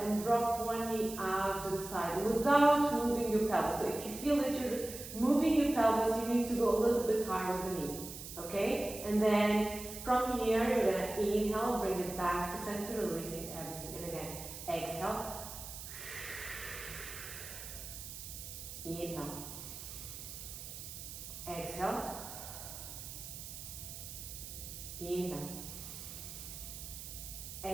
drop one knee out to the side without moving your pelvis. So if you feel that you're moving your pelvis, you need to go a little bit higher with the knee. Okay? And then from here, you're going to inhale, bring it back to center, releasing everything. And again, exhale. Inhale. Exhale. Inhale.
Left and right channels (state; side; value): noise; right; hiss, 10 dB below the sound